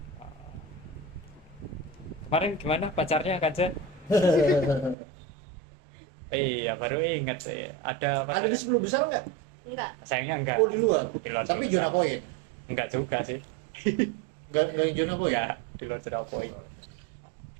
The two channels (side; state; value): left; drops out; at 5.0 s